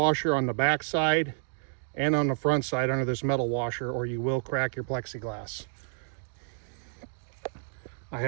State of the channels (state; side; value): silent; left; digital silence